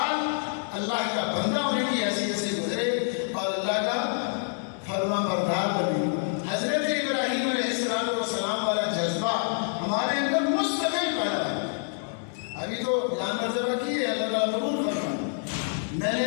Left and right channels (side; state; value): right; silent; 60 dB below the other